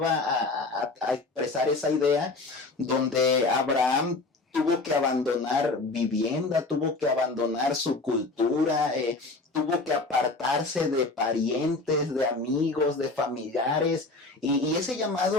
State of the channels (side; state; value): right; quieter; 3.4 dB